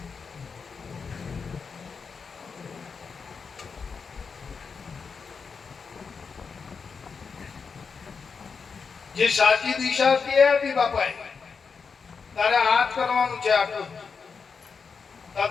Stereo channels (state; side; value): quieter; right; 5.4 dB